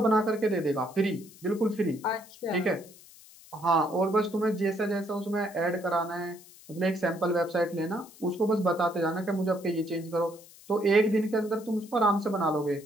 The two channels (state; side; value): noise; left; hiss, 22 dB below the sound